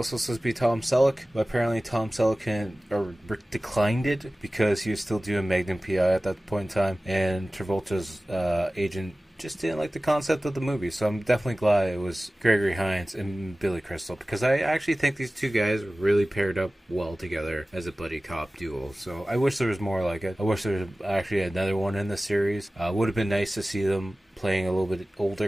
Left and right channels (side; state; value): both; normal; correlation 0.97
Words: supposed to be Tom Selleck, but apparently Tom Selleck declined it because he was still doing Magnum P.I. at that point in time, and Travolta's agent just didn't like the concept of the movie. So I'm definitely glad it was Gregory Hines and Billy Crystal, because I actually think these two guys really paired up well together as a buddy cop duo. So I wish there was more like it. I wish there was actually another one in the series. Would have been nice to see them playing a little bit older